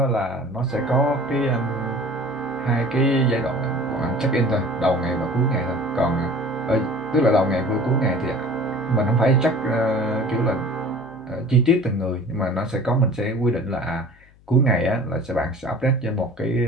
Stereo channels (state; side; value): noise; left; hum, 28 dB below the sound